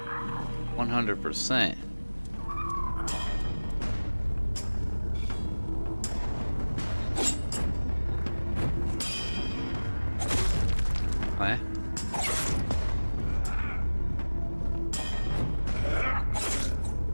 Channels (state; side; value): inverted; both; correlation -1.00